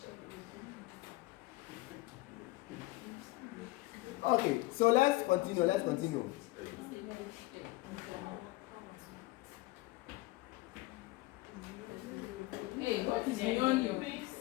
Okay, so let's continue. Hey, what is beyond you?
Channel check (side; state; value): right; quieter; 20.1 dB